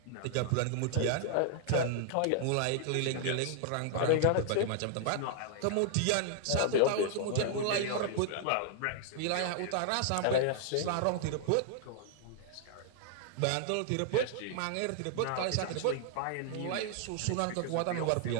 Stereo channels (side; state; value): both; different; correlation 0.00